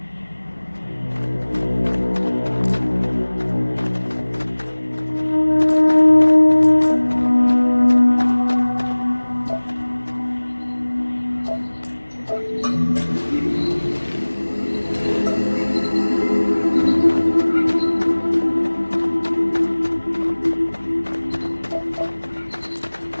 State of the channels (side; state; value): both; inverted; correlation -1.00